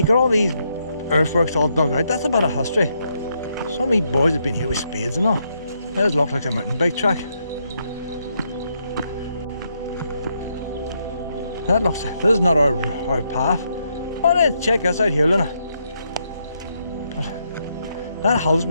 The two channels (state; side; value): inverted; both; correlation -0.78